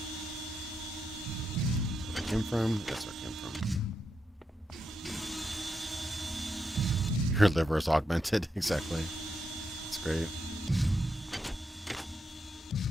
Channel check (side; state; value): both; normal; correlation 0.84